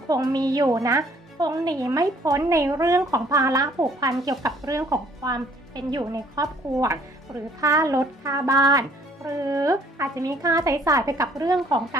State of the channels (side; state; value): both; normal; correlation 0.60